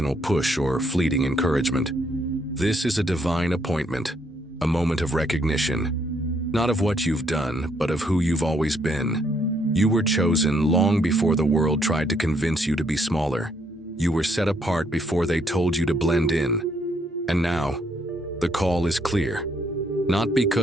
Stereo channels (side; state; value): both; normal; correlation 0.71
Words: push or fleeting encouragement. This is a divine appointment, a moment of recognition, not of what you've done, but of who you've always been. You were chosen long before the world tried to convince you to be smaller. You were set apart before they told you to blend in. And now, the call is clear. Not